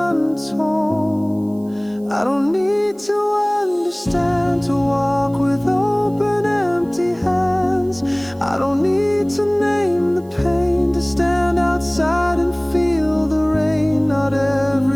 I don't need to understand to walk with open, empty hands. I don't need to name the pain to stand outside and feel the rain. Not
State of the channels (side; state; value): right; noise; hiss, 30 dB below the sound